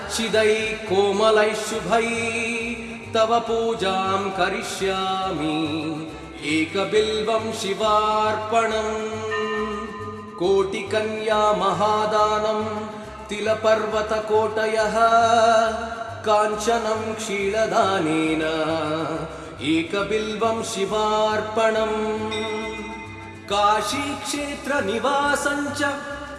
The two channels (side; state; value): both; identical; correlation 1.00